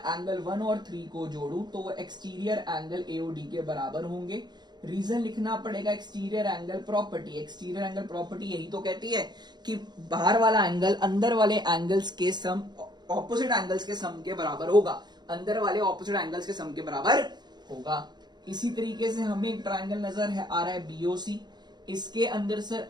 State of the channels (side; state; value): left; late; 0.21 ms